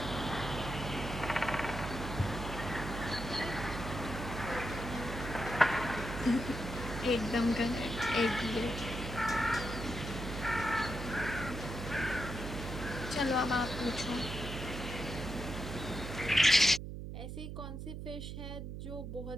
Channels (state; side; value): noise; right; hum, 7 dB below the sound